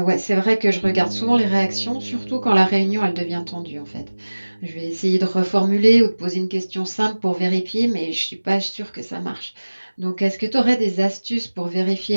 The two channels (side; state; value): both; inverted; correlation -1.00